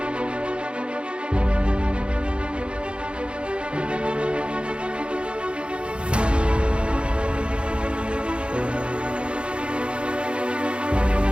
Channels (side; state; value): left; late; 0.056 ms